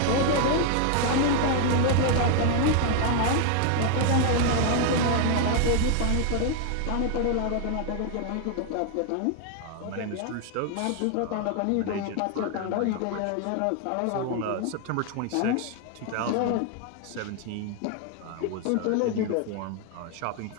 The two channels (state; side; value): different; both; correlation 0.00